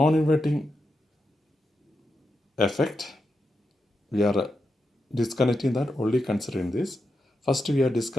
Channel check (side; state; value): both; normal; correlation 0.87